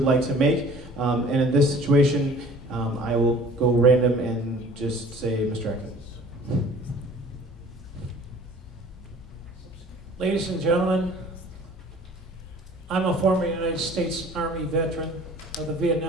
like to make. And in this situation, I will go random and just say, Mr. Acton. Ladies and gentlemen, I'm a former United States Army veteran of the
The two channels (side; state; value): both; normal; correlation 0.49